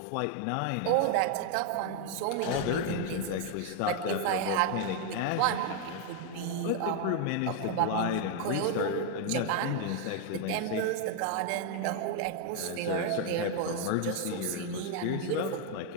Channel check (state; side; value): different; both; correlation 0.01